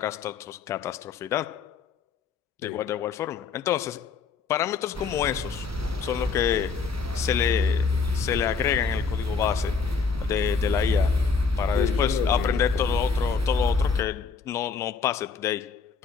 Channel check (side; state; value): right; quieter; 5.2 dB